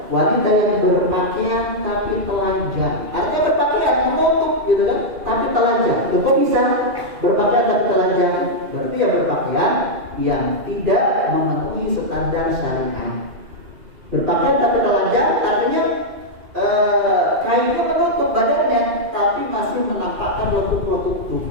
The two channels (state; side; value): late; left; 2.5 ms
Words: wanita yang berpakaian tapi telanjang. Artinya berpakaian menutup gitu kan, tapi telanjang. Kok bisa berpakaian tapi telanjang? Berarti ya berpakaian yang tidak memenuhi standar syariat. Berpakaian tapi telanjang artinya kainnya menutup badannya tapi masih menampakkan lekuk-lekuk